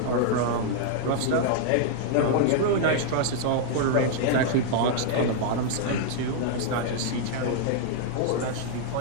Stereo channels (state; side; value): different; both; correlation -0.01